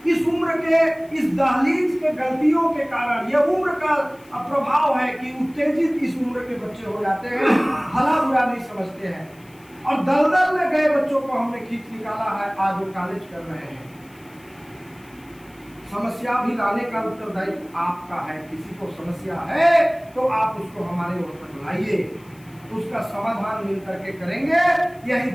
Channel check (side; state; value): left; noise; hiss, 28 dB below the sound